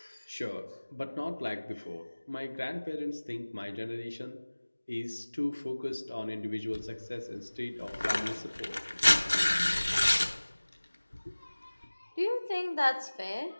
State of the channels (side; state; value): both; inverted; correlation -1.00